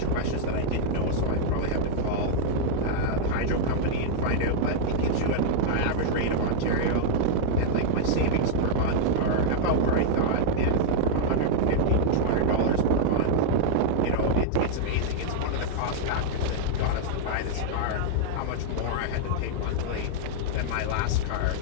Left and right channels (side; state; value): both; different; correlation -0.01